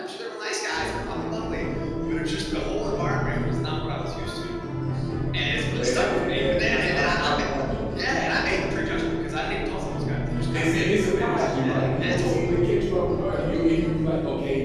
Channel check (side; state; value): both; identical; correlation 1.00